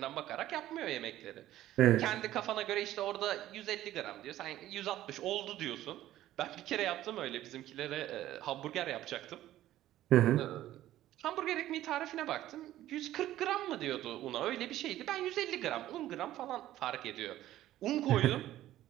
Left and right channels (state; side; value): quieter; left; 13.9 dB